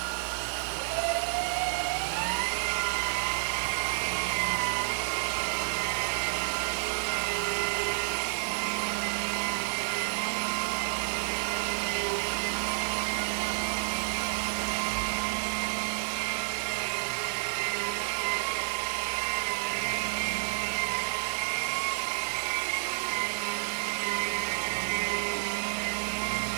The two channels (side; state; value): left; silent; digital silence